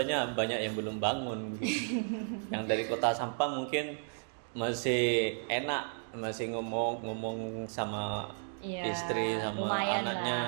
banyak yang belum bangun gitu. Yang dari Kota Sampang mungkin masih enak, masih ngomong sama Iya, istri sama lumayan anaknya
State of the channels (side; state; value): left; silent; digital silence